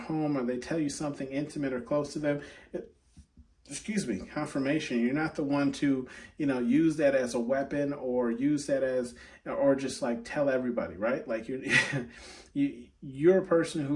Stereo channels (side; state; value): both; identical; correlation 1.00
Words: or they tell you something intimate or close to them, confirmation. You're not the one to, use that as a weapon or use that as, or just like tell everybody, right? Like you're a person